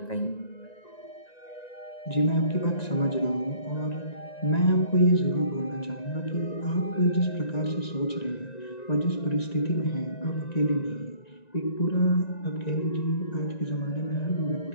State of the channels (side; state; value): right; late; 1.9 ms